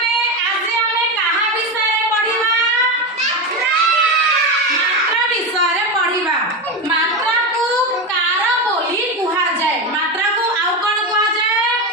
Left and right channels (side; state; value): both; normal; correlation 0.16